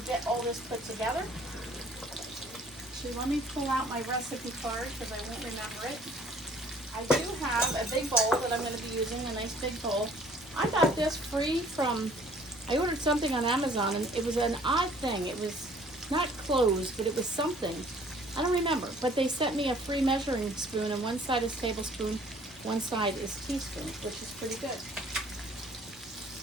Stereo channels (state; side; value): normal; both; correlation 0.56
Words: get all this put together. So let me pull out my recipe card because I won't remember it. I do have a big bowl that I'm going to be using, a nice big bowl. I got this free from, I ordered something on Amazon, and it was an odd thing. It was not closed, but it was something. I don't remember, but they sent me a free measuring spoon, and one side is tablespoon, one side is teaspoon, which is pretty good.